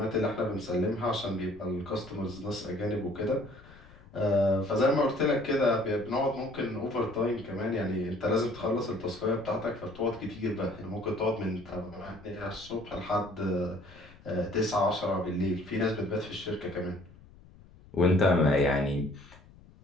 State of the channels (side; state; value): left; noise; rumble, 23 dB below the sound